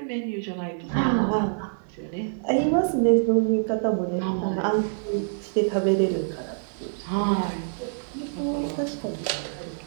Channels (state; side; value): silent; left; digital silence